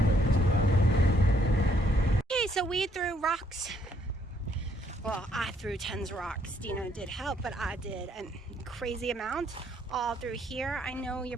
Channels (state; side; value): normal; both; correlation 0.69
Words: So we threw rocks. Well, I threw tons of rocks. Dina did help, but I did a crazy amount all through here. I know you're